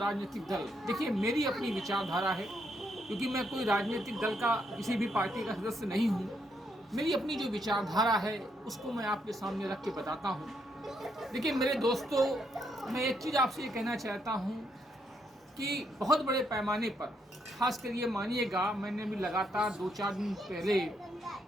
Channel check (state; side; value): normal; both; correlation 0.76